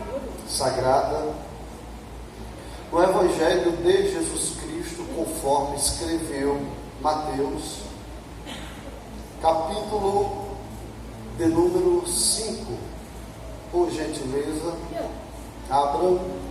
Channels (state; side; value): identical; both; correlation 1.00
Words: Sagrada, no Evangelho de Jesus Cristo, conforme escreveu Mateus, capítulo de número 5. Por gentileza, abram